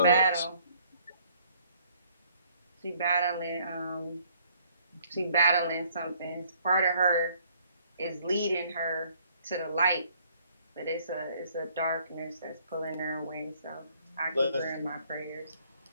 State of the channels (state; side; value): inverted; both; correlation -0.63